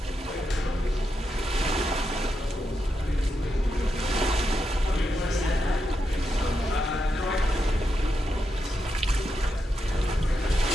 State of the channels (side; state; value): both; normal; correlation 0.85